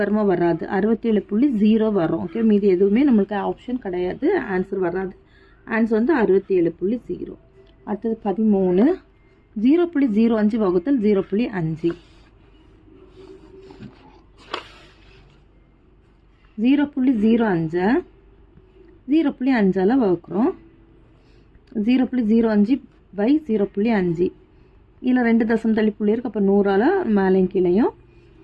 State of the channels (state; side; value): identical; both; correlation 1.00